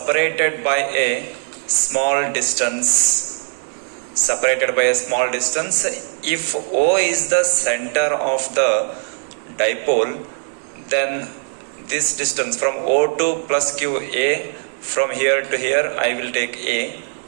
by a small distance. If O is the center of the dipole, then this distance from O2 plus Q A, from here to here I will take A.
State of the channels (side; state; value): left; silent; digital silence